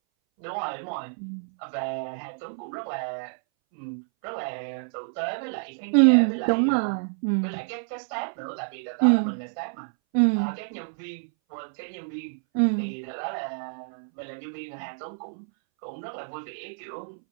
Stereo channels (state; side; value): silent; left; 59 dB below the other